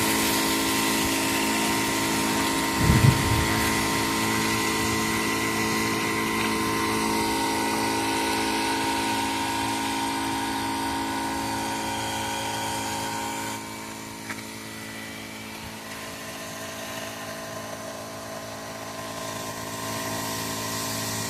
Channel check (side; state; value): both; identical; correlation 1.00